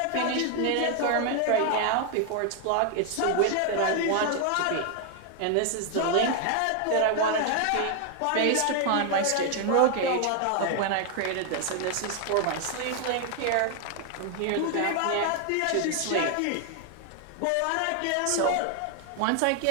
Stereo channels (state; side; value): different; both; correlation 0.00